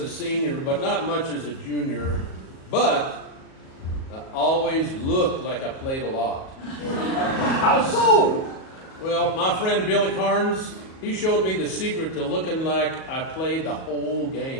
senior, but not much as a junior. But I always looked like I played a lot. How so? Well, my friend Billy Carnes, he showed me the secret to looking like I played the whole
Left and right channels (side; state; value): right; late; 37 ms